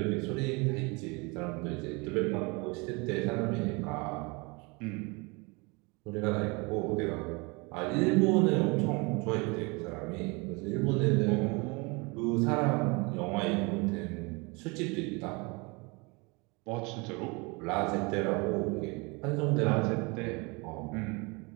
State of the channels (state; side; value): quieter; left; 28.3 dB